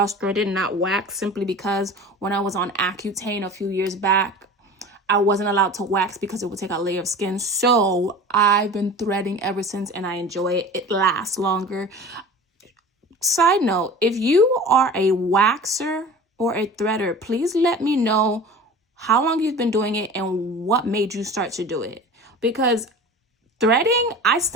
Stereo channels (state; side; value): normal; both; correlation 0.38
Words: threaded, not waxed, simply because when I was on Accutane a few years back, I wasn't allowed to wax because it would take a layer of skin. So I've been threading ever since, and I enjoy it. It lasts longer. Side note, if you are a waxer or a threader, please let me know how long you've been doing it and what made you start to do it. Because threading, I